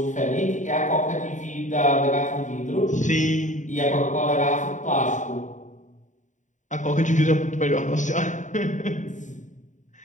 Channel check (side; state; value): right; late; 0.36 ms